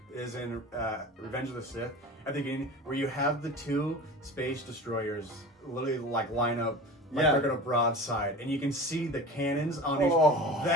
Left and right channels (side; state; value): both; normal; correlation 0.34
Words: is in Revenge of the Sith, at the beginning, where you have the two space destroyers literally line up they're gonna broadside, and you can see the cannons on each.